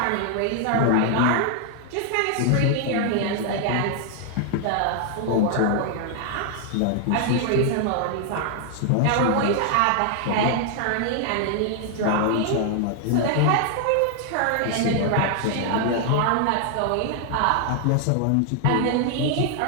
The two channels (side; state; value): both; different; correlation 0.00